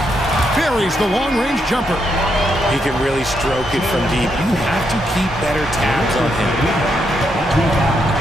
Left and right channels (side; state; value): both; normal; correlation 0.79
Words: Buries the long-range jumper. He can really stroke it from deep. You have to keep better tabs on him.